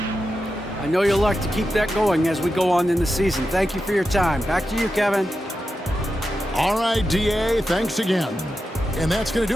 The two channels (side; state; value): both; normal; correlation 0.90